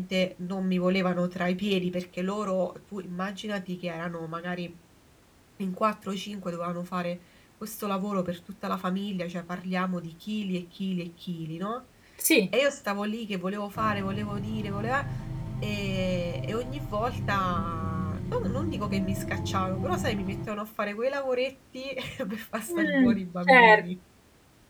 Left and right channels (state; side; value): identical; both; correlation 1.00